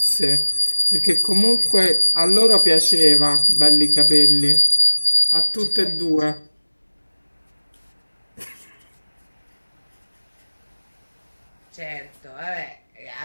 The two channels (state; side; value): inverted; both; correlation -1.00